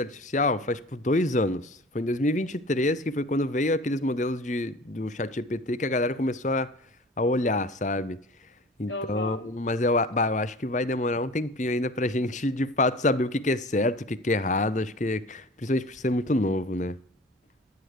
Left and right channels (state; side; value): normal; both; correlation 0.41